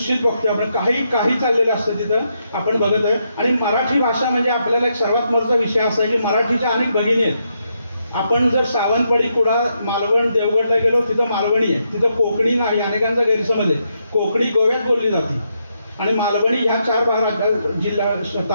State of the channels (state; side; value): inverted; both; correlation -0.80